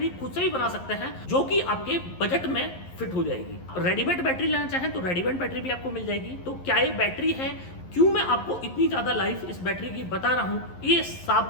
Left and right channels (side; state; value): right; late; 11 ms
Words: खुद से भी बना सकते हैं, जो कि आपके बजट में फिट हो जाएगी। रेडीमेड बैटरी लेना चाहें तो रेडीमेड बैटरी भी आपको मिल जाएगी। तो क्या ये बैटरी है, क्यों मैं आपको इतनी ज्यादा लाइफ इस बैटरी की बता रहा हूं, ये